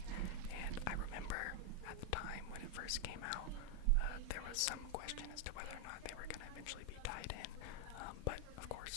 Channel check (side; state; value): both; different; correlation 0.00